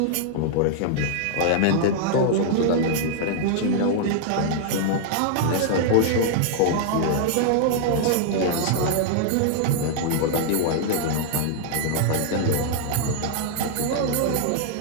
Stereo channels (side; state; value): both; different; correlation -0.01